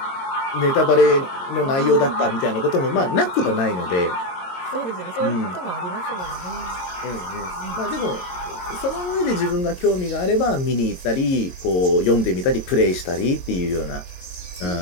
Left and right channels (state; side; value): late; right; 22 ms